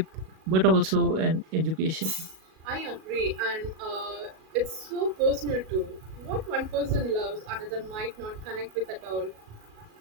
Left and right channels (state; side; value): late; left; 37 ms